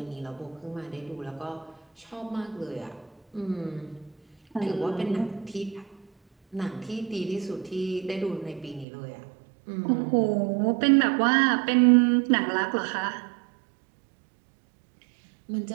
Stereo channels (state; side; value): drops out; left; at 8.8 s